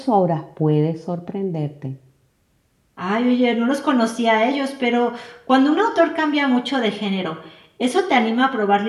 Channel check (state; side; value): identical; both; correlation 1.00